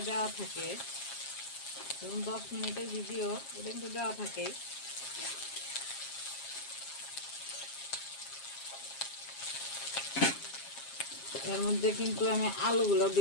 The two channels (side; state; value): right; late; 7.4 ms